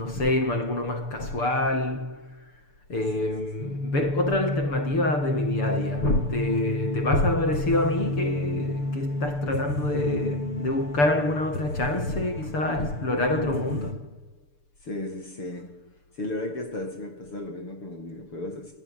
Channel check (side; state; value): right; late; 6.8 ms